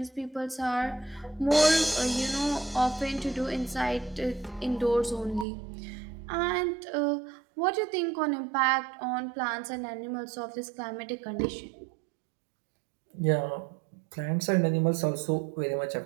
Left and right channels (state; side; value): drops out; left; at 5.5 s